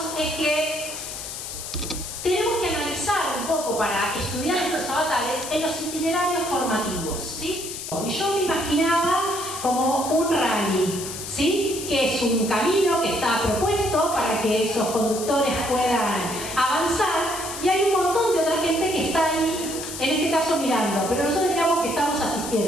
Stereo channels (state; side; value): noise; left; hiss, 8 dB below the sound